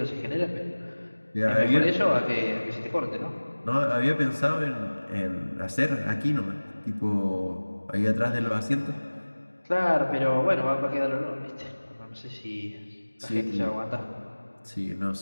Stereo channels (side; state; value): both; inverted; correlation -1.00